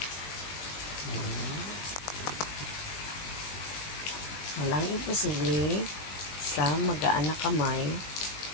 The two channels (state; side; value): late; right; 21 ms